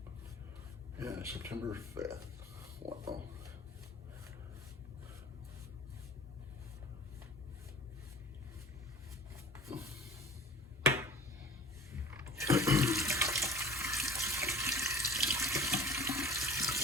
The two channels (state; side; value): normal; both; correlation 0.45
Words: Yeah, September 5th. Wow.